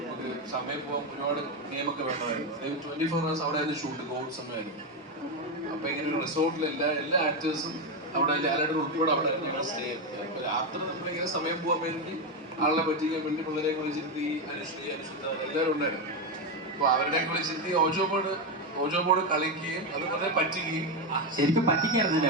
സമയം പോകാൻ ഒരുപാട് നിയമൊക്കെ വേണ്ടതായിരുന്നു. 24 hours അവിടെ ആയിരുന്നു ഷൂട്ട്, കോവിഡ് സമയമായിരുന്നു. അപ്പൊ ഇങ്ങനെ ഒരു റിസോർട്ടിൽ എല്ലാ ആക്ടേഴ്സും അവിടെ, ലാലേട്ടൻ ഉൾപ്പെടെ അവിടെ ഞങ്ങൾ സ്റ്റേ ചെയ്തു. രാത്രി നമ്മളിങ്ങനെ സമയം പോകാൻ വേണ്ടി ആളെ പറ്റിക്കാൻ വേണ്ടി പിള്ളേരെ വിളിച്ചിരുത്തി, അനുശ്രീ, അനുഷ്ഠ എല്ലാവരും ഉണ്ടായിരുന്നു. അപ്പൊ അവരുടെയൊക്കെ വിളിച്ചിരുത്തി ഓജോ ബോർഡ് കളിക്കുകയും അതുപോലെ പറ്റിക്കുകയും. ശരിക്കും പറ്റിക്കായിരുന്നല്ലേ?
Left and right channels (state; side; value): normal; both; correlation 0.09